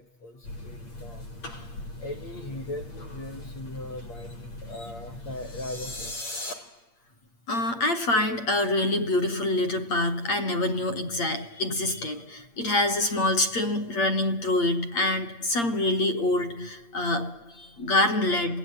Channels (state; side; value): late; right; 8.6 ms